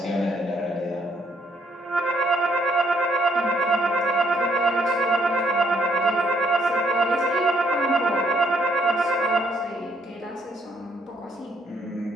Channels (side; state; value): both; normal; correlation 0.69